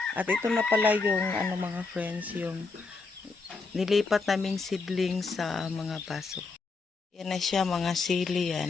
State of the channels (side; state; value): right; quieter; 4.1 dB